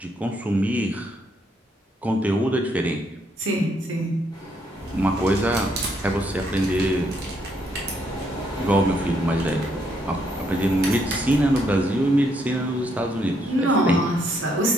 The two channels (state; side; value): normal; both; correlation 0.73